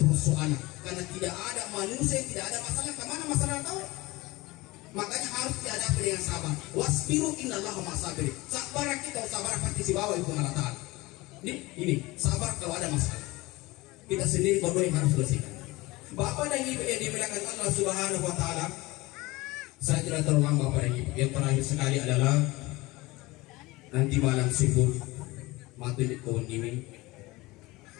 persoalan. Karena tidak ada manusia, tidak ada masalah. Kemana masalah tahu? Makanya harus dihadapi dengan sabar. Wasbiru innallaha ma'as-sabirin. Sabar kita, sabar pasti si bawah itu Allah. Ini sabar kalau ada masalah. Kita sendiri berdua yang harus bersihkan. Bapak dan Ibu yang dimuliakan Allah Subhanahu wa taala, saya tidak terlalu lama Bapak dan Ibu. Yang terakhir sekali adalah nanti malam sibuk mati di kawan ini.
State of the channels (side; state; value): right; quieter; 21.3 dB